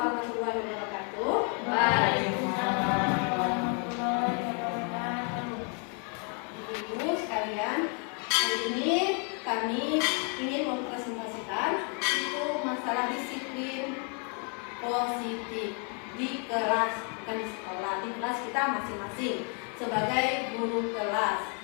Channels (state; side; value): quieter; right; 38.7 dB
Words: wabarakatuh. Waalaikumsalam warahmatullahi wabarakatuh. Ibu sekalian, hari ini kami ingin mempresentasikan itu masalah disiplin positif di kelas, bukan di sekolah, di kelas kita masing-masing sebagai guru kelas.